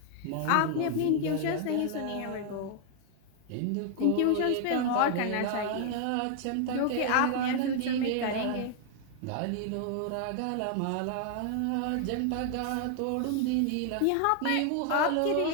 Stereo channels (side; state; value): both; different; correlation 0.00